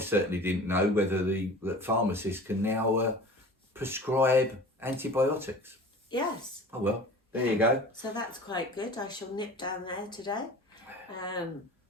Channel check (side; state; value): both; normal; correlation 0.40